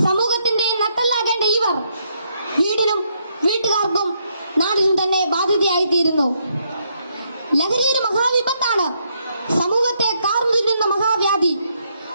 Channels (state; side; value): inverted; both; correlation -0.76